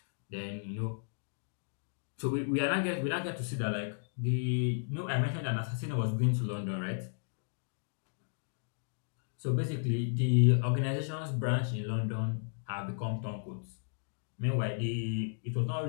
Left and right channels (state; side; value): silent; right; digital silence